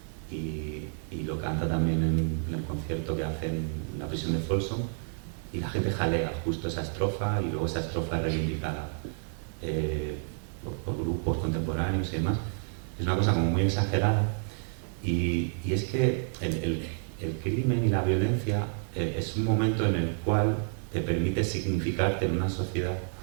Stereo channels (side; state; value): left; silent; 58 dB below the other